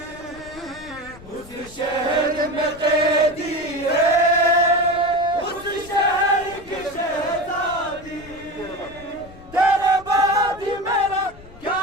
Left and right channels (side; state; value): left; noise; rumble, 20 dB below the sound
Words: उस शहर में कैदी है उस शहर की शहजादी तेरे बाद ही मेरा क्या